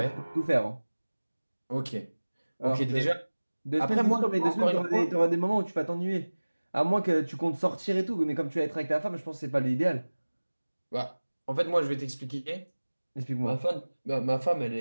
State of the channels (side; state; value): both; inverted; correlation -1.00